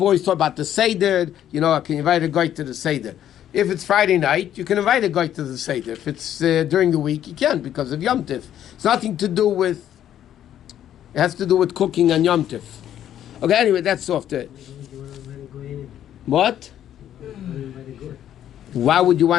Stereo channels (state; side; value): quieter; right; 10.9 dB